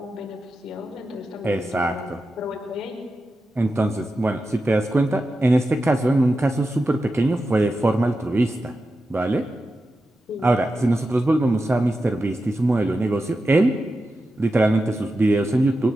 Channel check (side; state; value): both; normal; correlation 0.91